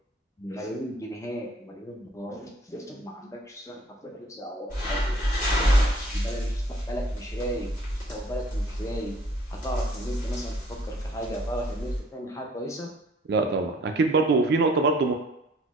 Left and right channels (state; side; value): normal; both; correlation 0.57